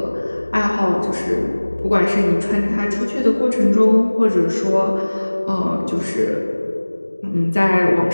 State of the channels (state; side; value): inverted; both; correlation -1.00